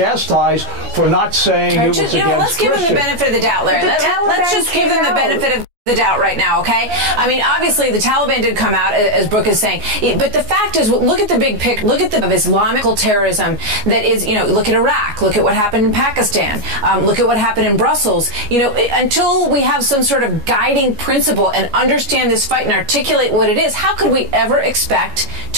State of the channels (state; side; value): late; left; 14 ms